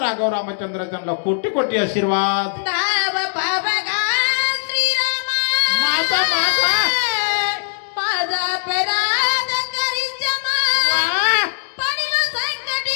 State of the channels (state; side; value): silent; right; digital silence